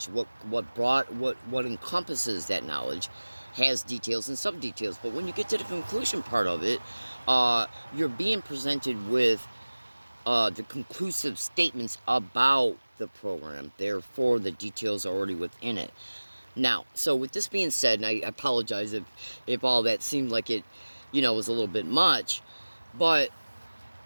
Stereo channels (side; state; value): both; inverted; correlation -1.00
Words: what encompasses that knowledge has details and sub details. But when you get to the conclusion part of it, you're being presented with the conclusive statements about the program. Therefore, the details are already within it. Now, so with this being said, and I apologize if all that seemed like it, was a little bit much, but